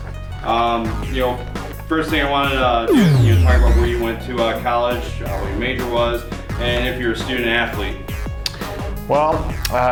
First thing I wanted to do is talk about where you went to college, what your major was, and if you're a student athlete. Well,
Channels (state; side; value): identical; both; correlation 1.00